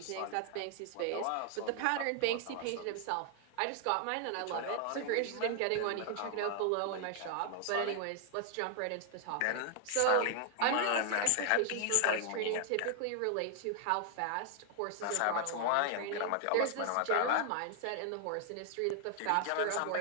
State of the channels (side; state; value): both; different; correlation 0.00